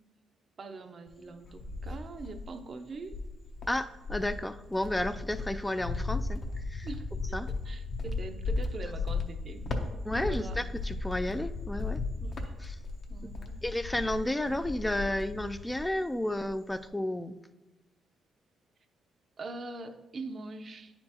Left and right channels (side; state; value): both; normal; correlation 0.89